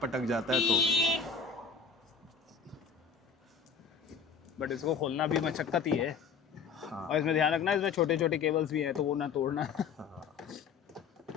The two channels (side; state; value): right; quieter; 5.9 dB